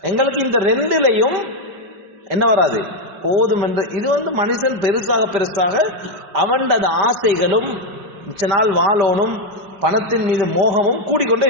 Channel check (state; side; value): late; left; 5.1 ms